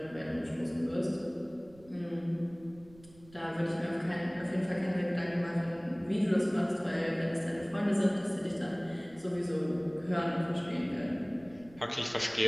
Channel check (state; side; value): noise; right; rumble, 24 dB below the sound